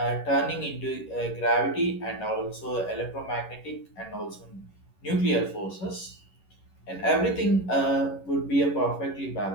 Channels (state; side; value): late; right; 11 ms